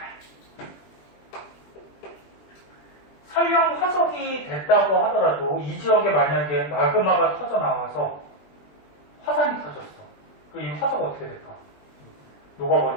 설령 화석이 됐다고 하더라도 이 지역에 만약에 마그마가 터져 나와서 화산이 터졌어. 그 이 화석 어떻게 될까?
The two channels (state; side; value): late; right; 20 ms